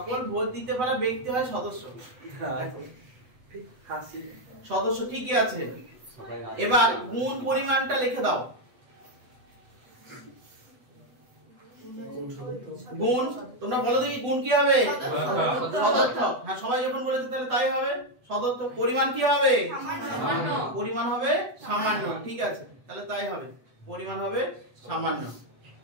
ভোট দিতে পারা ব্যক্তি হয় সদস্য। লেখো সদস্য, ঠিকই আছে। এবার গুণ পরিমাণটা লিখে দাও। গুণ তোমরা বলো দেখি, গুণ কি হবে? সদর্থক। হ্যাঁ সবাই যখন বলেছে তাহলে তাই হবে, সদর্থ। পরিমাণ কি হবে? সামান্য। পরিমাণ হবে সামান্য। ঠিক আছে, তাহলে তাই হবে, পরিমাণ হবে সামান্য।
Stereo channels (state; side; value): late; left; 8.0 ms